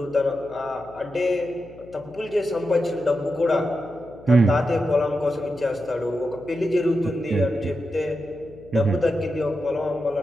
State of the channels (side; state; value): left; noise; hum, 21 dB below the sound